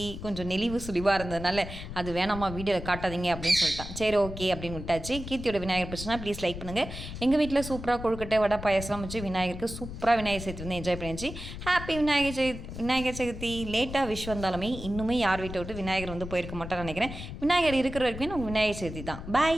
நெளிவு சுழிவாக இருந்ததுனால அது வேணாமா வீடியோவில் காட்டாதீங்க அப்படின்னு சொல்லிட்டான். சரி ஓகே அப்படின்னு விட்டாச்சு. கீர்த்தியோட விநாயகர் பிடிச்சினா ப்ளீஸ் லைக் பண்ணுங்கள். எங்கள் வீட்டில் சூப்பராக கொழுக்கட்டை வடை பாயசம் வச்சு விநாயகருக்கு சூப்பராக விநாயகர் சதுர்த்தி வந்து என்ஜாய் பண்ணிச்சு. ஹாப்பி விநாயகர் சதுர்த்தி. லேட்டாக விஷ் வந்தாலுமே இன்னுமே யார் வீட்டை விட்டு விநாயகர் வந்து போயிருக்க மாட்டான்னு நினைக்கிறேன். விநாயகர் இருக்கிற வரைக்கும் நம்ம விநாயகர் சதுர்த்தி தான்.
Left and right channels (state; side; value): noise; left; rumble, 10 dB below the sound